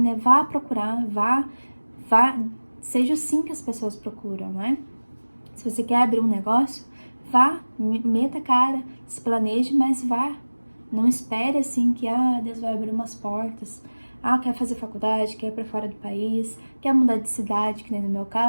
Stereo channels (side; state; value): both; inverted; correlation -1.00